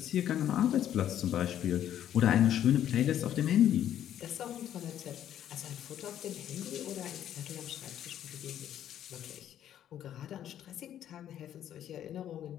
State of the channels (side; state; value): right; quieter; 10.8 dB